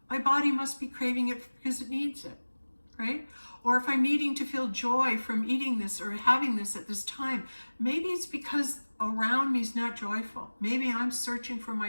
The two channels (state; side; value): inverted; both; correlation -1.00